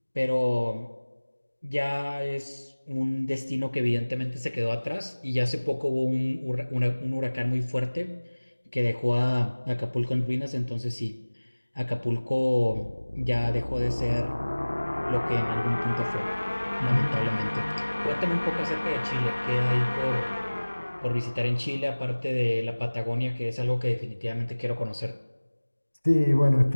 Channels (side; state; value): both; inverted; correlation -1.00